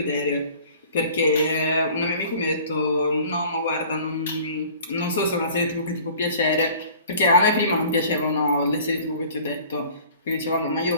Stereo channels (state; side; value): inverted; both; correlation -0.48